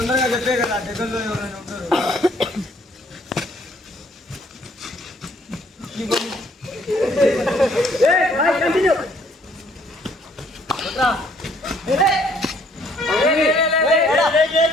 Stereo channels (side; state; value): both; normal; correlation 0.63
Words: చెప్పే కదా, దగ్గరలో ఎవరైనా ఉంటారు.